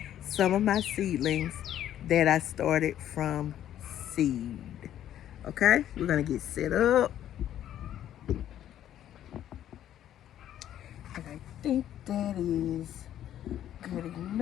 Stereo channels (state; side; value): quieter; right; 11.3 dB